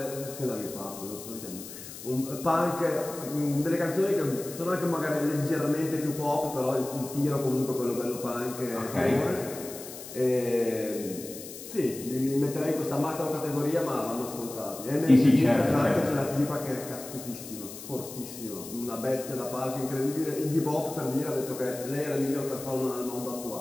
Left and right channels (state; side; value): noise; left; hiss, 12 dB below the sound